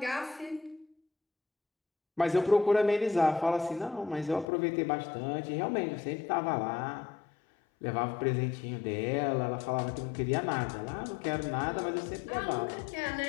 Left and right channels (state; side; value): drops out; right; at 4.5 s